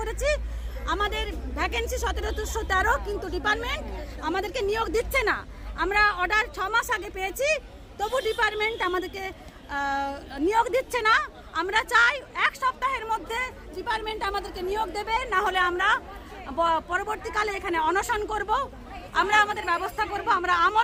আমাদের ভ্যাকেন্সি 1713, কিন্তু ডিপার্টমেন্ট আমাদেরকে নিয়োগ দিচ্ছে না। আমরা অর্ডার 6 মাস আগে পেয়েছি, তবু ডিপার্টমেন্ট আমাদেরকে নিয়োগ দিচ্ছে না। আমরা চাই 1 সপ্তাহের মধ্যে ডিপার্টমেন্ট আমাদেরকে নিয়োগ দেবে, না হলে আমরা পরবর্তীকালে এখানে অনশন করব। আমরা আমাদের ব্যবস্থা করব, আমরা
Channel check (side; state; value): both; identical; correlation 1.00